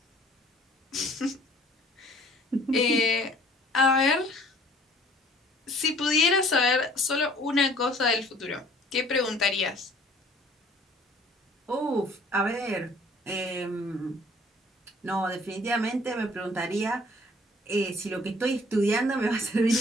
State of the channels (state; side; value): normal; both; correlation 0.55